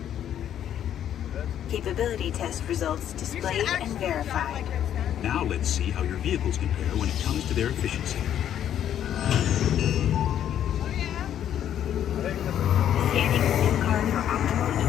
Capability test results displayed and verified. Now let's see how your vehicles compare when it comes to their efficiency. Scanning SIM card for optimal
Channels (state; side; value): quieter; right; 10.3 dB